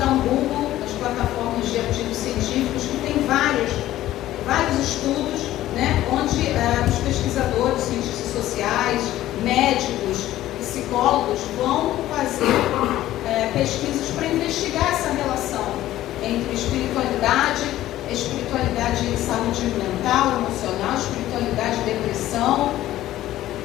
um Google nas plataformas de artigos científicos, que tem vários estudos, né, onde os pesquisadores, cientistas sociais, médicos, psicólogos vão fazer pesquisas para investigar essa relação entre espiritualidade e saúde mental, emocional, espiritualidade e depressão.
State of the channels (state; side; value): quieter; right; 14.3 dB